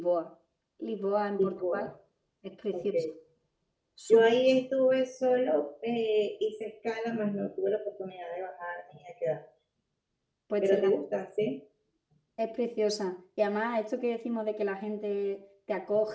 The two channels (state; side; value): identical; both; correlation 1.00